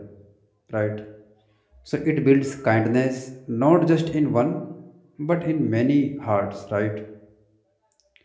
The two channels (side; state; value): both; identical; correlation 1.00